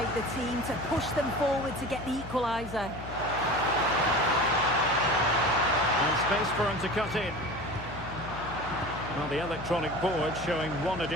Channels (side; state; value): left; noise; hum, 12 dB below the sound